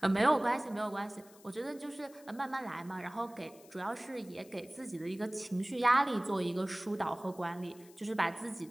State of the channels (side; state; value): left; noise; hiss, 24 dB below the sound